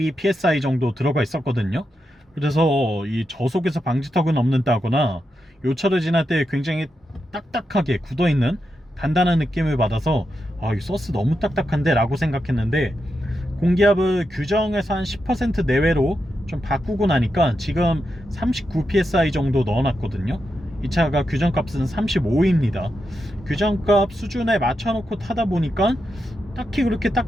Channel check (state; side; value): normal; both; correlation 0.86